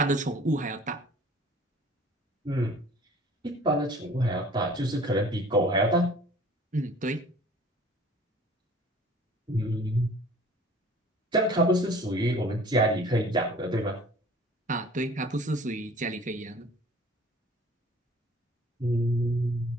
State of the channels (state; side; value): normal; both; correlation 0.50